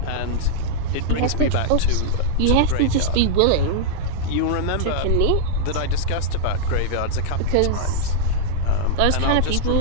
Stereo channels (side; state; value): both; different; correlation -0.01